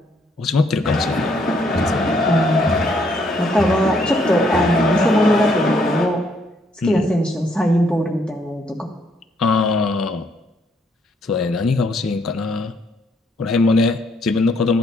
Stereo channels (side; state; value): both; normal; correlation 0.70